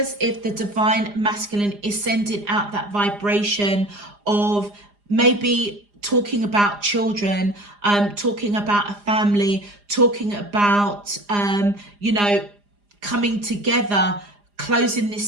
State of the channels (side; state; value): left; late; 4.9 ms